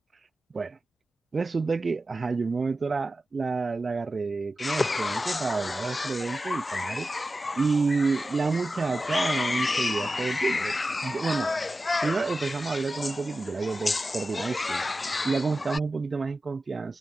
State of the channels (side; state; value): both; normal; correlation 0.93